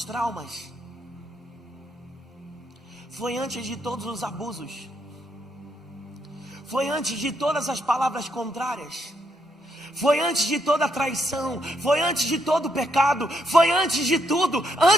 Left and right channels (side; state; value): both; normal; correlation 0.76